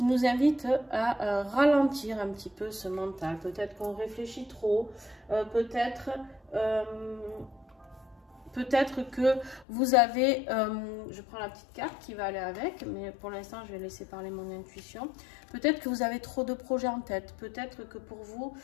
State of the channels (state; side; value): drops out; right; at 9.7 s